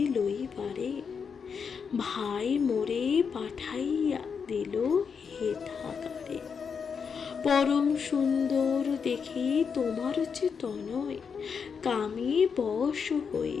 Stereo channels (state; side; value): quieter; right; 6.2 dB